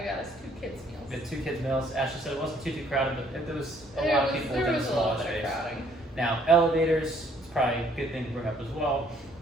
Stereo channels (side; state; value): both; normal; correlation 0.64